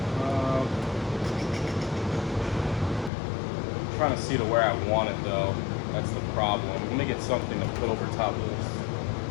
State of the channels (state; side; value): drops out; right; at 3.1 s